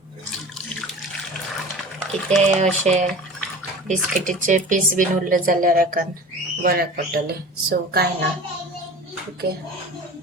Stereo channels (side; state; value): both; normal; correlation 0.39